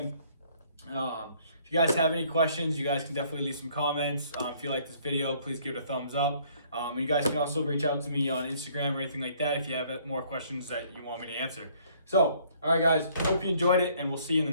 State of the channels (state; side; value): inverted; both; correlation -0.61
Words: If you guys have any questions, you guys can definitely leave some comments. If you like this video, please give it a thumbs up. And you guys can also reach out to me on Instagram or anything like that if you have more questions that you want me to answer. So, all right, guys, hope you enjoyed it, and we'll see you in the